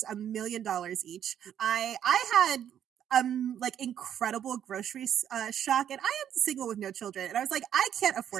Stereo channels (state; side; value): quieter; left; 9.8 dB